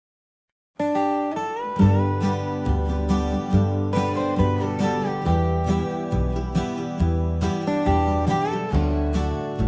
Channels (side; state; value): both; identical; correlation 1.00